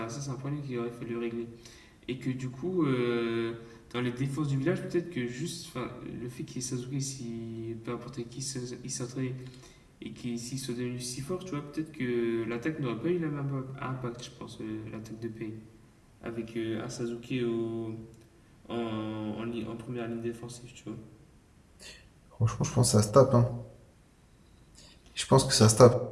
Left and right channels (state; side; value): identical; both; correlation 1.00